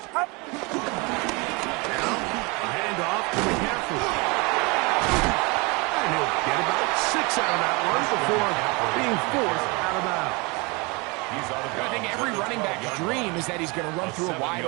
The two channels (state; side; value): quieter; left; 27.9 dB